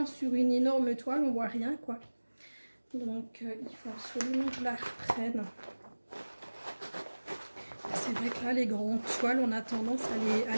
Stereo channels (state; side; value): inverted; both; correlation -1.00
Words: sur une énorme toile, on voit rien quoi. Donc il faut absolument que je la reprenne. C'est vrai que là les grandes toiles on a tendance à